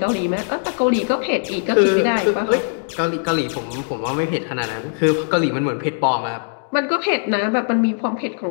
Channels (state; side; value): silent; right; digital silence